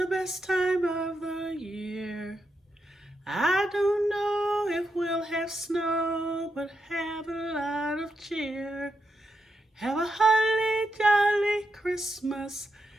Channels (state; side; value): normal; both; correlation 0.84